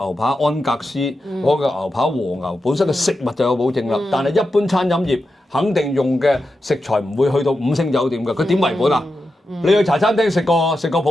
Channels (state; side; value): normal; both; correlation 0.89